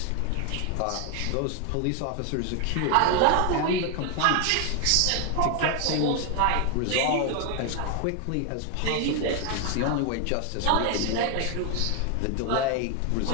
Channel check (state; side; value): different; both; correlation 0.01